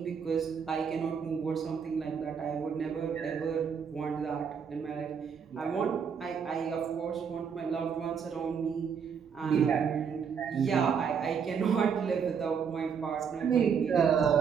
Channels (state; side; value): quieter; left; 6.8 dB